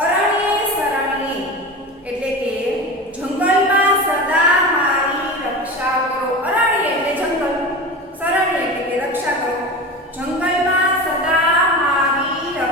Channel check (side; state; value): both; normal; correlation 0.29